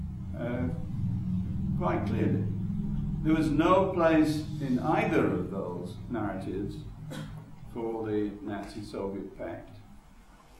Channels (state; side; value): identical; both; correlation 1.00